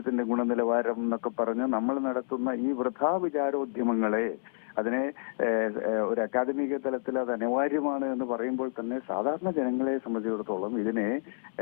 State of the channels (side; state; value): right; silent; 58 dB below the other